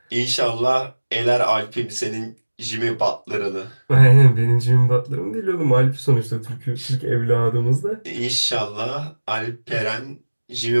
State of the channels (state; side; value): inverted; both; correlation -1.00